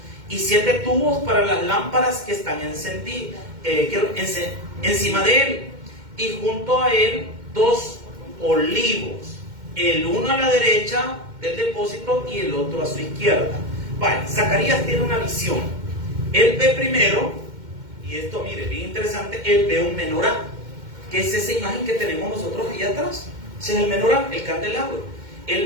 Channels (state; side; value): late; left; 2.1 ms